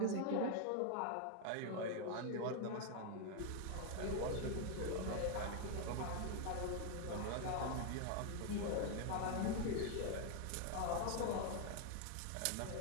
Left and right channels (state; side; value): different; both; correlation 0.00